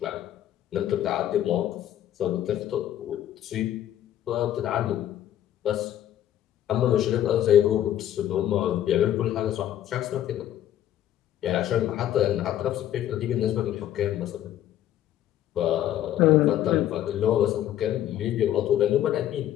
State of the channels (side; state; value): right; quieter; 11.8 dB